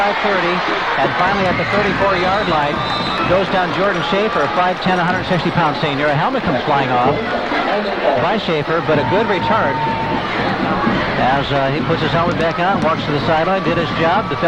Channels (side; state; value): both; identical; correlation 1.00